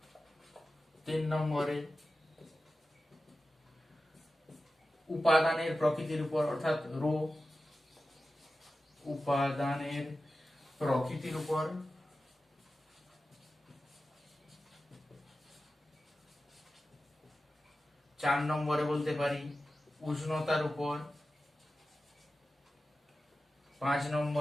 3 নম্বরে উপাদানের প্রকৃতির উপর, অর্থাৎ রো, উপাদানের প্রকৃতির উপর, 4 নম্বরে বলতে পারি উষ্ণতার উপর, 5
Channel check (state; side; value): normal; both; correlation 0.94